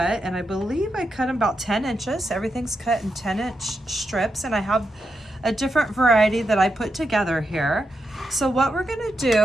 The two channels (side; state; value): both; normal; correlation 0.85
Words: and I believe I cut them about 10 inches. Everything's cut in 10-inch strips, and I have a different variety that I put together here. So what we're gonna